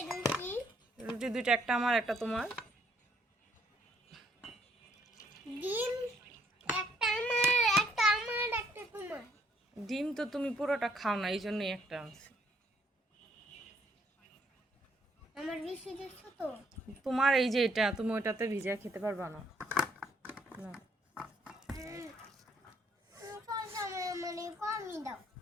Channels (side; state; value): both; normal; correlation 0.68